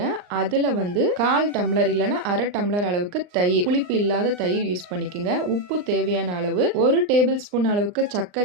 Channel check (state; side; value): late; left; 39 ms